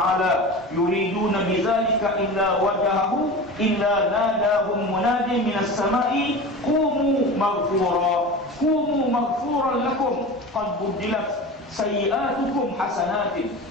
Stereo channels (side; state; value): both; normal; correlation 0.32